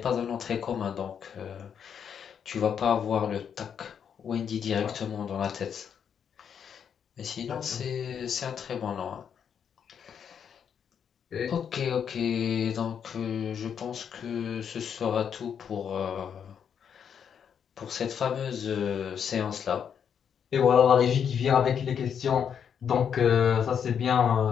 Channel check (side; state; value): right; quieter; 7.8 dB